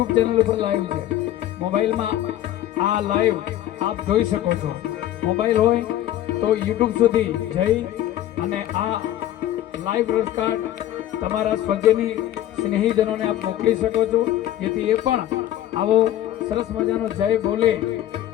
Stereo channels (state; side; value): quieter; right; 12.8 dB